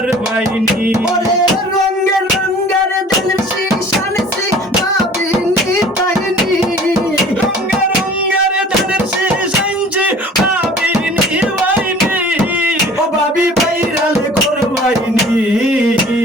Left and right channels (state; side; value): normal; both; correlation 0.47